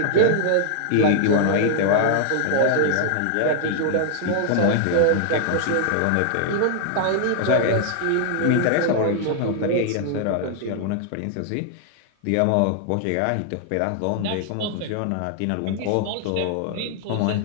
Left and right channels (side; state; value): both; different; correlation 0.00